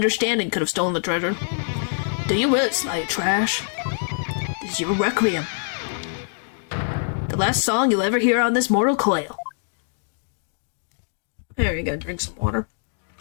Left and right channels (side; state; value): right; silent; digital silence